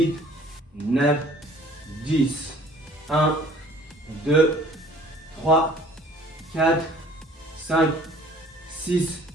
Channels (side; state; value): both; normal; correlation 0.53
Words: 9, 10. 1, 2, 3, 4, 5, 6,